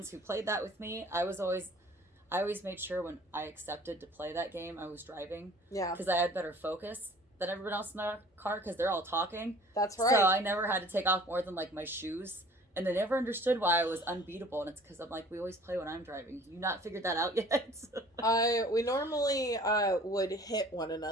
who played that with me. I always made sure when I accepted to play that game, I was driving. Yeah. Because I had better focus than everyone else in the car because they're all talking. That's right. So I never had to take off more than like my shoes. And they never understood why I was unbeatable. And it's because I'm like, we always play when I'm driving. You not figured that out yet? We normally would hit one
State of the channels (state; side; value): normal; both; correlation 0.49